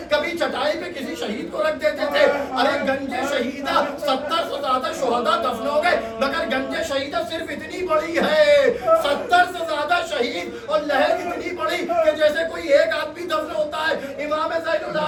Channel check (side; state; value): both; identical; correlation 1.00